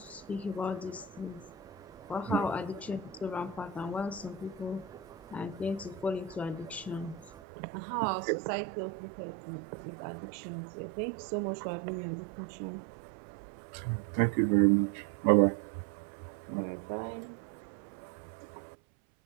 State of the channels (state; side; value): drops out; left; at 7.3 s